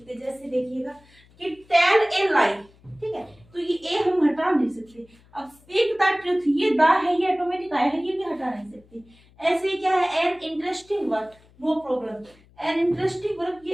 जैसे देखिएगा कि टेल ए लाई, ठीक है, तो ये ए हम हटा नहीं सकते। अब स्पीक द ट्रूथ, ये द है ये ऑटोमेटिक आया है, ये भी हटा नहीं सकते। ऐसे ही क्या है an interesting word, no problem, an interesting word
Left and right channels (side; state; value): left; noise; hum, 29 dB below the sound